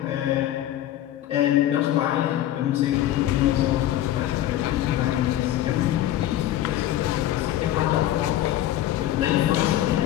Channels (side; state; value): right; quieter; 13.1 dB